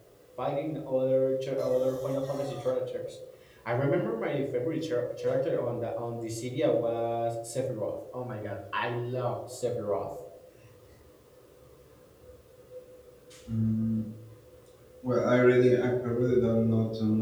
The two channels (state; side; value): identical; both; correlation 1.00